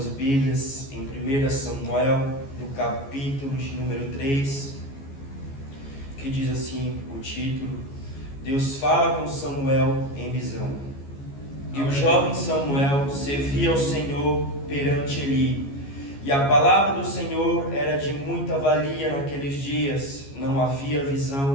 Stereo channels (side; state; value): right; late; 14 ms